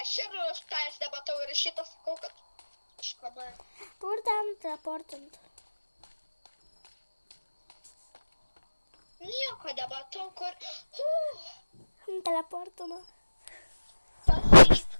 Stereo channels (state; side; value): inverted; both; correlation -1.00